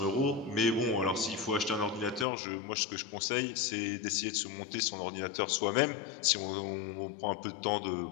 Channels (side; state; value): right; drops out; at 2.2 s